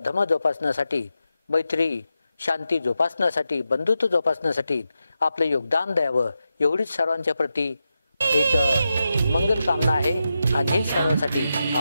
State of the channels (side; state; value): both; inverted; correlation -0.89